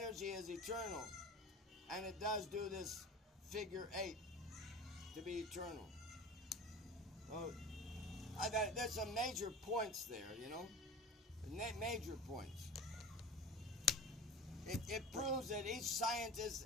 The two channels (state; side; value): normal; both; correlation 0.35